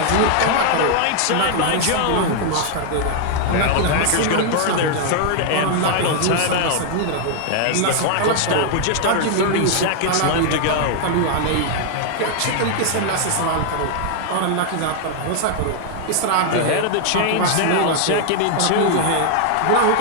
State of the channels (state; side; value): different; both; correlation 0.00